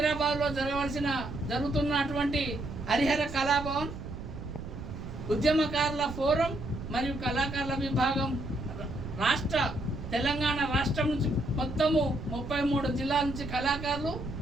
జరుగుతున్నటువంటి హరిహర కళాభవన్ ఉద్యమకారుల ఫోరం మరియు కళాకారుల విభాగం తెలంగాణ రాష్ట్రం నుంచి మొత్తము 33 జిల్లాల నుంచి కళాకారులు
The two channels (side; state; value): right; noise; rumble, 9 dB below the sound